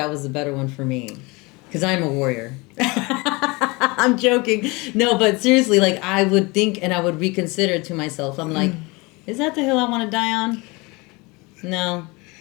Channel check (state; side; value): quieter; right; 25.7 dB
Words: was the better one for me, because I'm a warrior. I'm joking. No, but seriously, like, I would think and I would reconsider to myself. I'm like, is that the hill I want to die on? No.